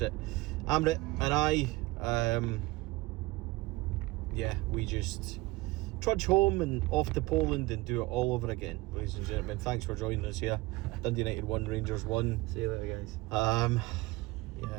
Amrit and I, we just trudge home and off to Poland and do it all over again. Ladies and gentlemen, thanks for joining us here. Dundee United 1, Rangers 1. See you later, guys.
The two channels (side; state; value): left; quieter; 20.8 dB